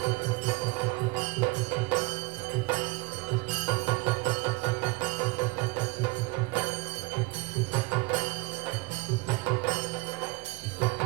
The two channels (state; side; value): quieter; left; 25.1 dB